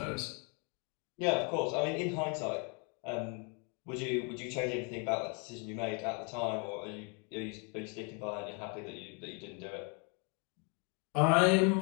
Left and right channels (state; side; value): quieter; right; 35.4 dB